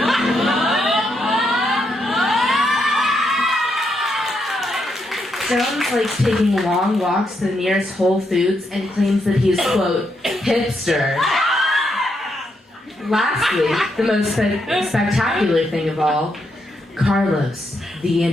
Jones likes taking long walks to the nearest Whole Foods and claims that he is, quote, hipster. Lastly, the most spectacular thing of all, Carlos, the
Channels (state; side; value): normal; both; correlation 0.80